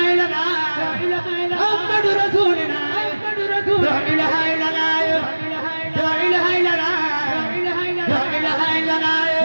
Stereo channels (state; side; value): inverted; both; correlation -1.00